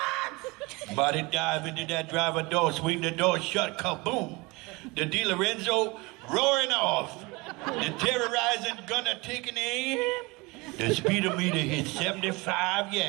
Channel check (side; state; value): left; quieter; 24.8 dB